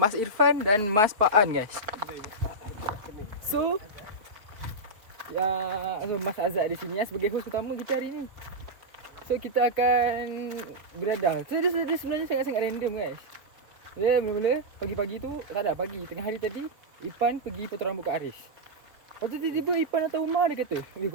Irfan dan Mas Paan guys. So, Mas Azad di sini sebagai host utama kita hari ini. So, kita akan beriadah. So, dia sebenarnya sangat-sangat random guys. Dia mula-mula pagi-pagi tu, tak ada pagi, tengah hari tadi Ipan pergi potong rambut kat Haris. Lepas tu tiba-tiba Ipan datang rumah, dia kata,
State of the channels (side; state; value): left; late; 4.5 ms